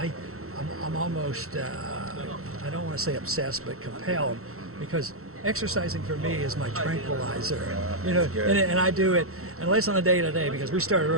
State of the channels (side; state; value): left; late; 0.63 ms